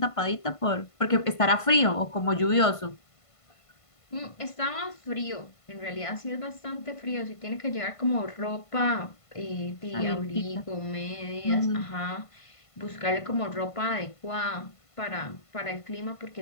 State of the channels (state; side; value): late; right; 1.5 ms